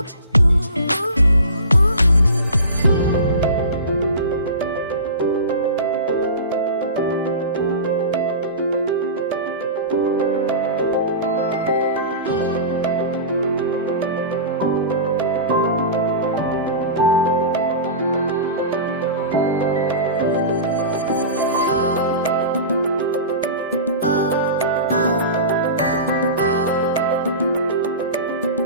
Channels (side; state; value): both; inverted; correlation -0.31